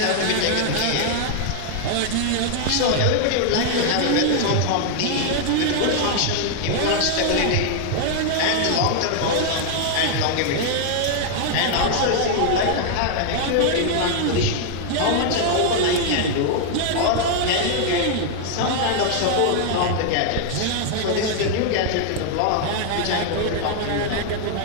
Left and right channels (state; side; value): different; both; correlation 0.00